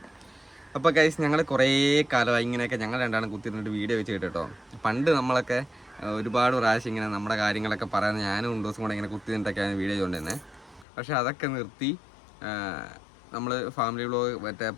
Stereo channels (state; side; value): drops out; right; at 10.9 s